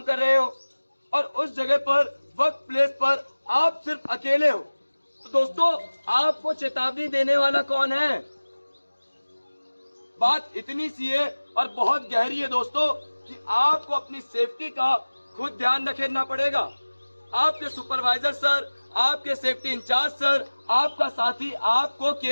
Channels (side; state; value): both; inverted; correlation -1.00